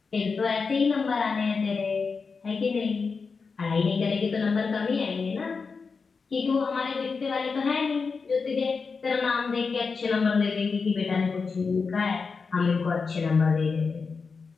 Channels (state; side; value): quieter; right; 4.9 dB